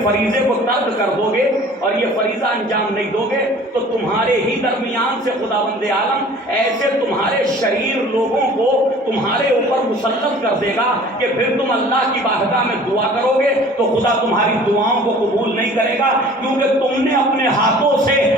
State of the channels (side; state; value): both; normal; correlation 0.47